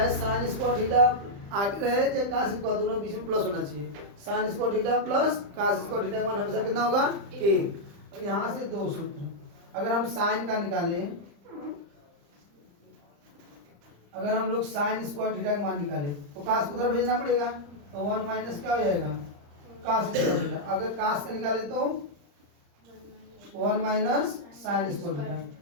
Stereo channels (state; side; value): late; left; 35 ms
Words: साइन स्क्वायर थीटा आगे रहे चाहे कास स्क्वायर, दोनों बीच में प्लस होना चाहिए। Sine square theta plus cos square theta का मान हमेशा कितना होगा 1। और यहाँ से 2 सूत्र, अगर हम साइन का निकालें, अगर हम लोग साइन स्क्वायर थीटा का मान निकालें तो कास को उधर भेजना पड़ेगा, तो 1 माइनस क्या हो जाएगा कास स्क्वायर थीटा। अगर कास का निकाले तो 1 माइनस साइन स्क्वायर थीटा।